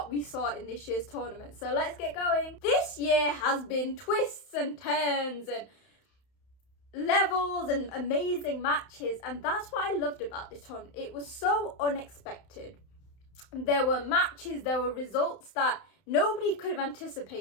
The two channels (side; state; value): right; late; 31 ms